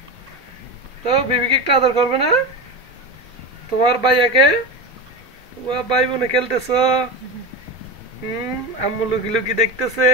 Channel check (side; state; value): both; normal; correlation 0.22